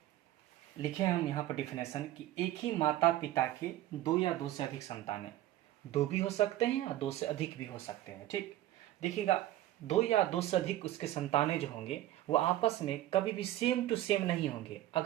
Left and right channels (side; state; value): left; quieter; 14.3 dB